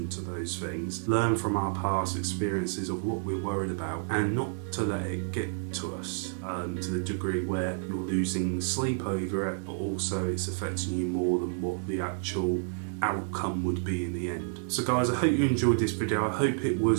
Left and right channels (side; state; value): left; silent; digital silence